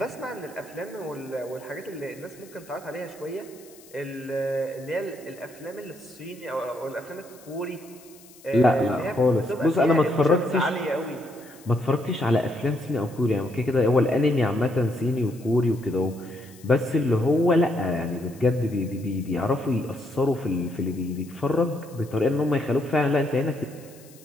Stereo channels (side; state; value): left; noise; hiss, 24 dB below the sound